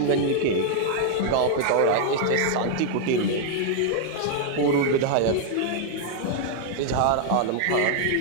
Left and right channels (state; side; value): different; both; correlation 0.00